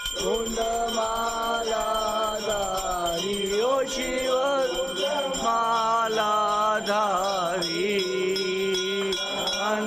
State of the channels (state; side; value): identical; both; correlation 1.00